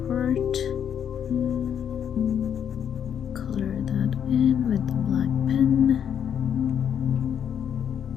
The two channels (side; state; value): right; quieter; 8.6 dB